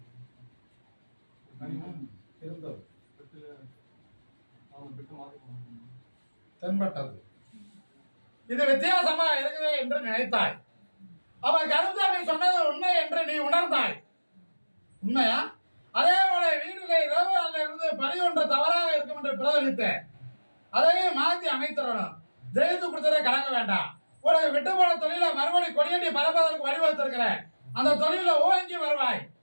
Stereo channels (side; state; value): both; inverted; correlation -1.00